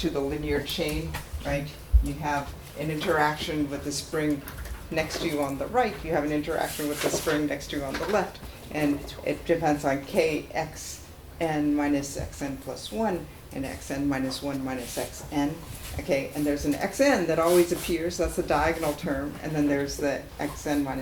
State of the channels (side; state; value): both; identical; correlation 1.00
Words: the linear chain, right? You have an interaction with the spring next to you on the right, you have an interaction with the spring next to you on the left, and it depends on kx xn minus xn plus 1 and xn minus 1 minus xn. Okay, and there's an xn that always appears, that's the diagonal term, and then there's the xn